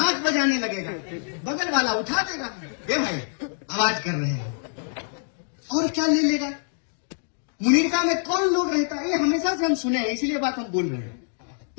बजाने लगेगा, बगल वाला उठा देगा, ए भाई आवाज कर रहे हैं, और क्या ले लेगा? मुनीरका में कौन लोग रहता है? ये हमेशा से हम सुने हैं, इसीलिए बात हम बोल रहे हैं।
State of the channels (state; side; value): silent; right; 62 dB below the other